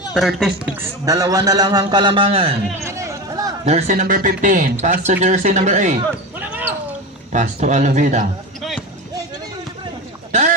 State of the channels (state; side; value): normal; both; correlation 0.23